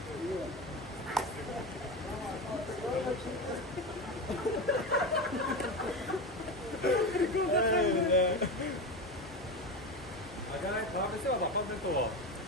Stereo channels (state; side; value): normal; both; correlation 0.20